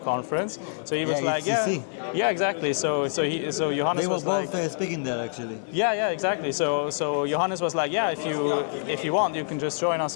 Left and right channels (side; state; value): right; silent; digital silence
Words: conference. So he was like, ETH. yeah, exactly. So Johannes They were was both like, speaking there, actually. yeah, exactly. So Johannes was like, yeah, if you want, you can just join us